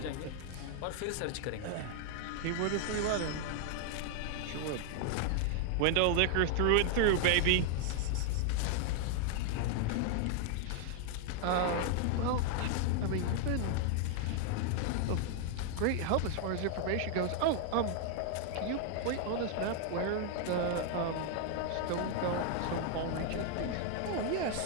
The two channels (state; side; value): different; both; correlation 0.00